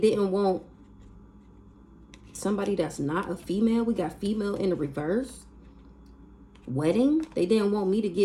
want somebody that's not a female. We got female in the reverse. Wedding. They didn't want me to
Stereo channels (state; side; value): identical; both; correlation 1.00